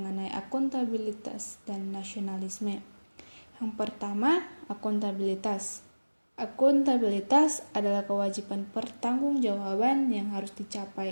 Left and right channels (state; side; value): inverted; both; correlation -1.00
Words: akuntabilitas dan nasionalisme. Yang pertama, akuntabilitas. Akuntabilitas adalah kewajiban pertanggungjawaban yang harus